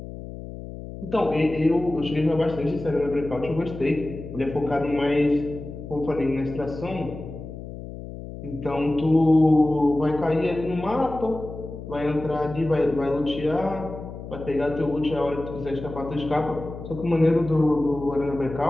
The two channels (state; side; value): noise; left; hum, 11 dB below the sound